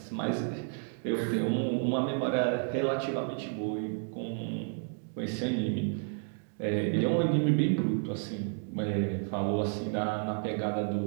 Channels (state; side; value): silent; left; 57 dB below the other